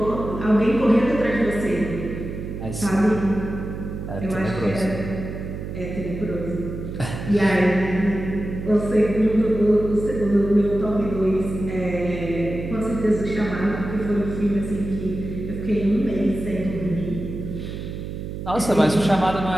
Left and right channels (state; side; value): noise; right; hum, 7 dB below the sound